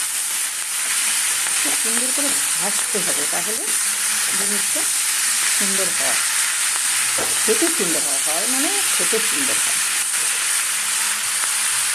সুন্দর করে ভাজতে হবে, তাহলে জিনিসটা সুন্দর হয়, খেতে সুন্দর হয়। হয় মানে খেতে সুন্দর হয়।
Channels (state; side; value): identical; both; correlation 1.00